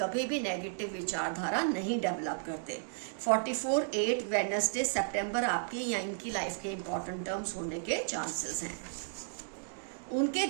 कभी भी नेगेटिव विचारधारा नहीं डेवलप करते। 44/8 वेडनेसडे सितंबर आपकी या इनकी लाइफ के इंपॉर्टेंट टर्म्स होने के चांसेस हैं। उनके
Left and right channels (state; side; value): silent; left; digital silence